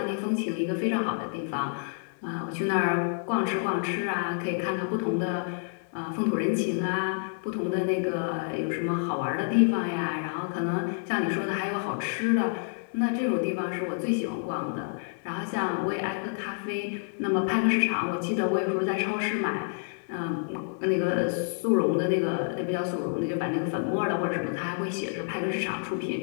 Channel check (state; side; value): silent; right; digital silence